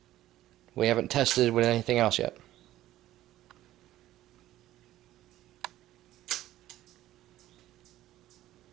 we haven't tested with anything else yet.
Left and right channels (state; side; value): quieter; left; 14.4 dB